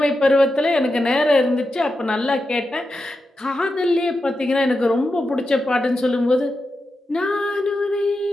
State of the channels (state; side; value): normal; both; correlation 0.89